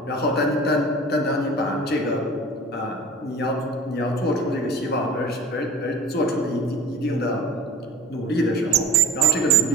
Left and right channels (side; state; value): both; normal; correlation 0.38